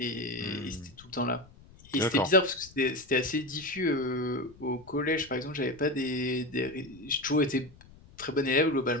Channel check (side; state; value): left; noise; rumble, 23 dB below the sound